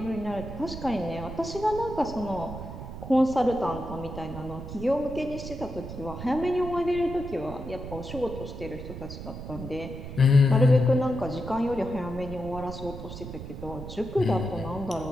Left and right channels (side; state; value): right; noise; rumble, 10 dB below the sound